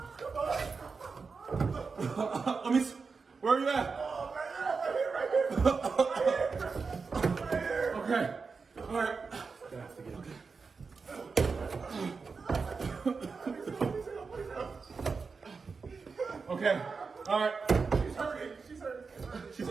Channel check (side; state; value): left; quieter; 4.8 dB